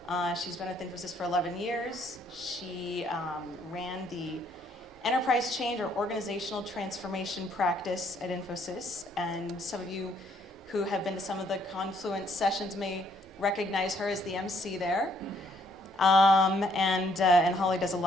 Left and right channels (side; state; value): both; normal; correlation 0.67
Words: She's been with Infosys for 11 years. She ran the enterprise change or organizational transformation practice at Infosys, and some of you who have been to some of the Confluence sessions may recognize her as the MC there. And Holly does a